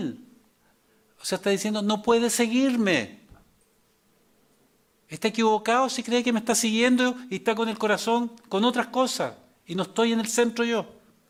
O sea, está diciendo, no puede seguirme. Está equivocado si cree que me está siguiendo y está con el corazón con otras cosas y no estoy en el centro yo.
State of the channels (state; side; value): identical; both; correlation 1.00